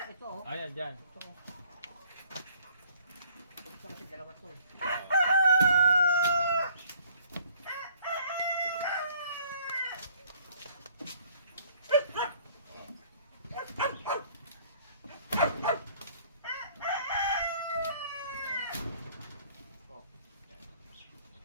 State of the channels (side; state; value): both; inverted; correlation -0.59